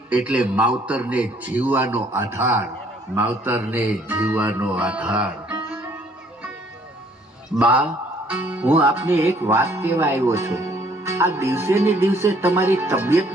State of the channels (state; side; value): normal; both; correlation 0.62